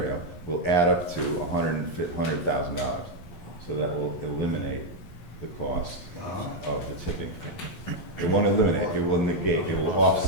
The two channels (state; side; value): late; right; 11 ms